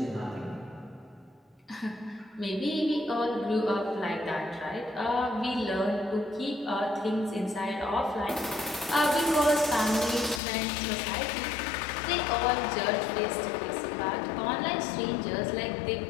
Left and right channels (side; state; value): right; drops out; at 10.4 s